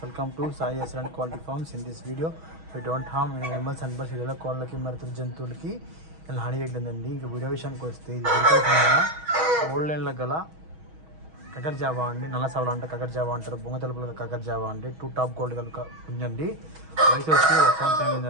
to Sai Excellent Quality Farms. In this video, we don't harm any animals and birds. ఇలా కోళ్ళకి మరియు జంతువులకి ఇలా హాని చేయట్లేదండి. ఇంకా వీడియో విషయానికి వస్తే ఇది ఓల్డ్ లైన్లో గల కకర్ జావా అండి, నల్ల సవల అంటే కకర్ జావా అంటారు, బొంగ తెలుపుల కకర్ జావా అండి. 2 టాప్ గోల్డ్ కనుక ఉందండి. వయసు వచ్చి 1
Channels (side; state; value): left; late; 6.3 ms